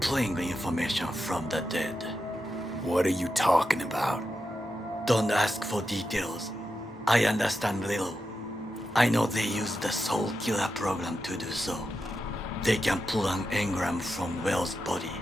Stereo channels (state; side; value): normal; both; correlation 0.88